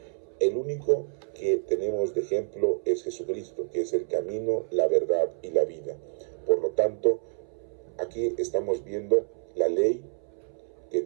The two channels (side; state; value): left; silent; 59 dB below the other